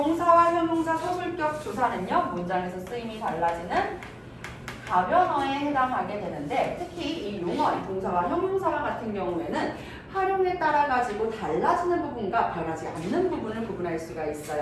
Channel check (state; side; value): identical; both; correlation 1.00